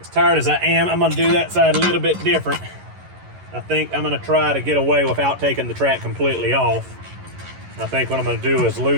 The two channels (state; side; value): late; left; 11 ms